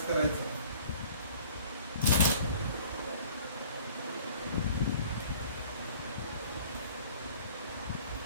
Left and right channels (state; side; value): inverted; both; correlation -0.51